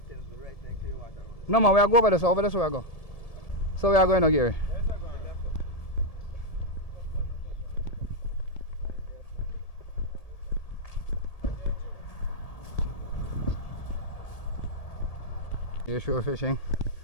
No man, we are go over this. Over this way I go. So we are going now, Gary. You're shore fishing.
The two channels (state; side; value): late; right; 1.7 ms